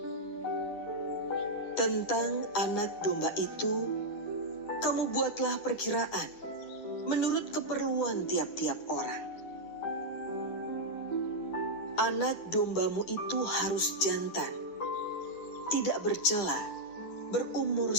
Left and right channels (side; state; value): right; late; 9.8 ms